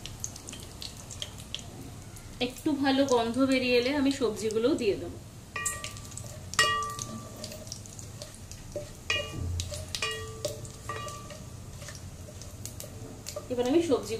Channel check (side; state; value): both; identical; correlation 1.00